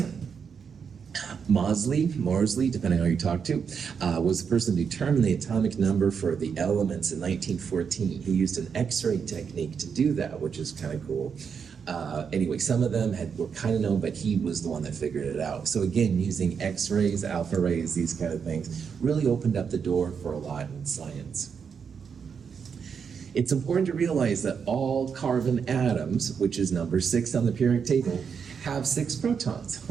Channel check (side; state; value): left; quieter; 6.5 dB